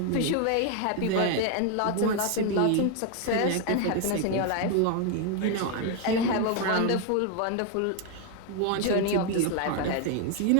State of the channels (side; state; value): both; different; correlation 0.01